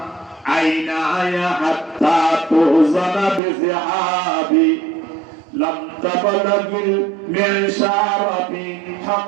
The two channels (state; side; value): drops out; left; at 3.4 s